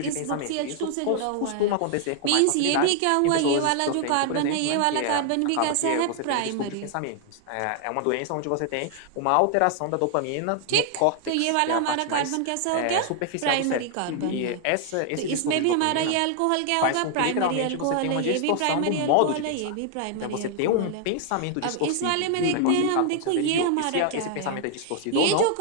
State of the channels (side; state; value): both; different; correlation 0.00